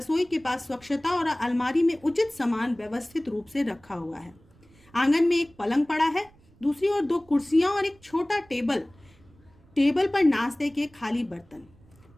के पास स्वच्छता और अलमारी में उचित सामान व्यवस्थित रूप से रखा हुआ है। आंगन में एक पलंग पड़ा है, दूसरी ओर 2 कुर्सियां और एक छोटा टेबल पर नाश्ते के खाली बर्तन।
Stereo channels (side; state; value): right; noise; rumble, 29 dB below the sound